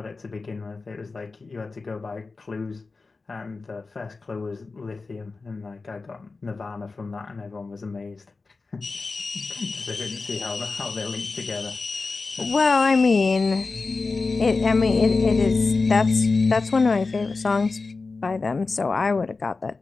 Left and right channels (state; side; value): quieter; right; 4.0 dB